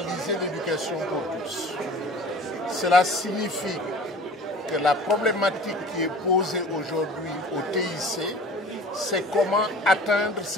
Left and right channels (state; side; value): normal; both; correlation 0.43